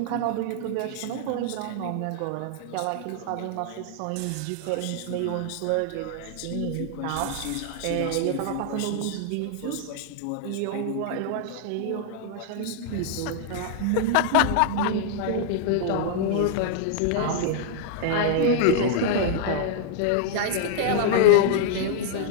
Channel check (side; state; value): both; different; correlation -0.01